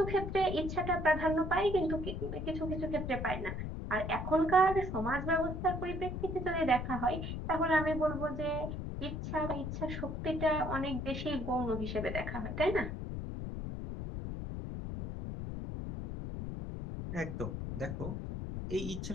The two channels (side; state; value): left; noise; rumble, 5 dB below the sound